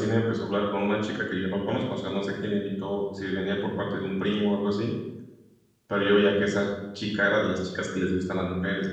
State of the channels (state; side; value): identical; both; correlation 1.00